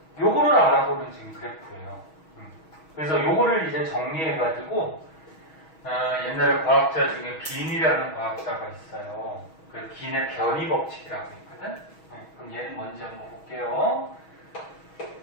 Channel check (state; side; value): late; right; 6.3 ms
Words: 요거를 알아보는 지금 그래프예요. 그래서 요거를 이제 정리해가지고 옛날에 과학자 중에 빈이라는 과학자가 있어요. 그 빈의 변이 법칙이라고 있거든. 그럼 얘는 뭔지 한번 볼게요.